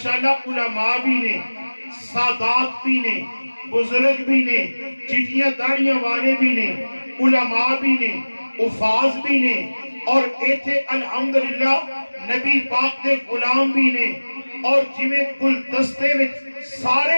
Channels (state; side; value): inverted; both; correlation -1.00